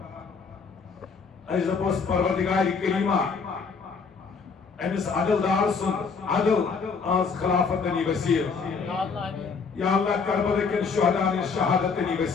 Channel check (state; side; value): quieter; right; 5.2 dB